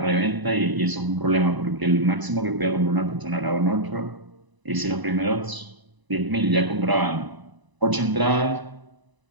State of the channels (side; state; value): left; late; 1.0 ms